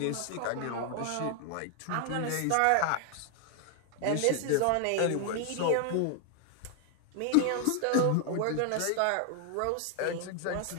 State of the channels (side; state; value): both; different; correlation 0.00